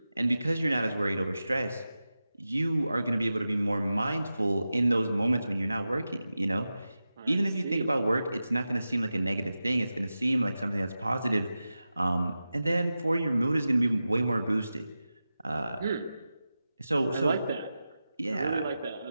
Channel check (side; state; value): both; inverted; correlation -0.93